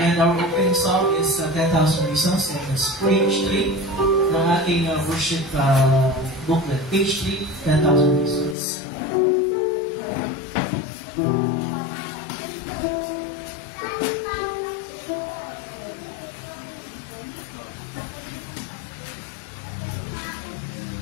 our opening song is 10,000 Reasons, and it's page 3 ng ating worship booklet. Page 3, 10,000 Reasons.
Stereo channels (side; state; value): right; drops out; at 8.6 s